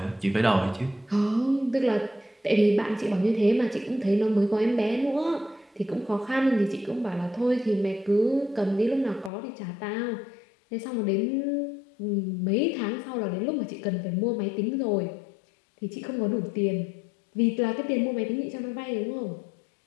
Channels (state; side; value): drops out; right; at 9.3 s